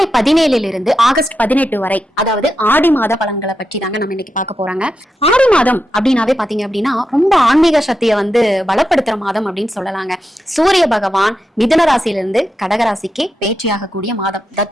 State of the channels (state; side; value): normal; both; correlation 0.87